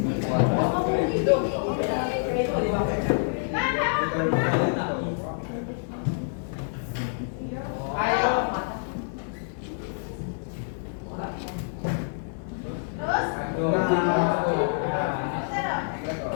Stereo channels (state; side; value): silent; right; digital silence